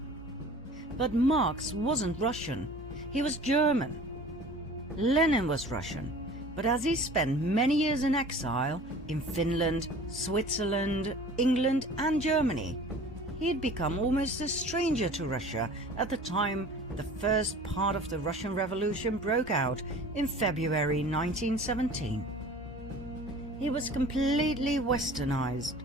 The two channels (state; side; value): normal; both; correlation 0.44